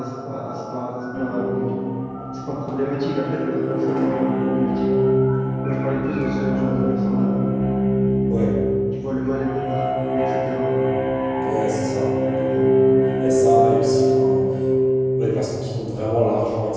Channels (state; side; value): identical; both; correlation 1.00